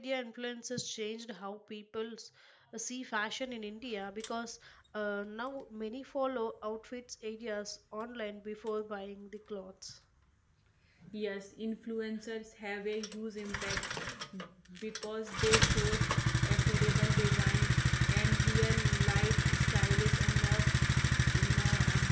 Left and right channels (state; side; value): identical; both; correlation 1.00